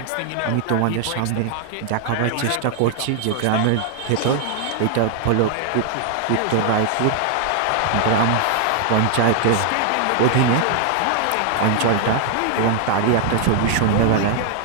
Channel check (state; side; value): different; both; correlation 0.00